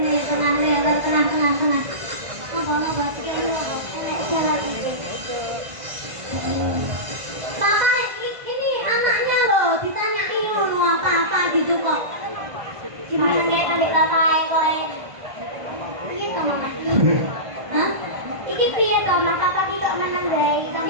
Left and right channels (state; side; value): late; left; 1.5 ms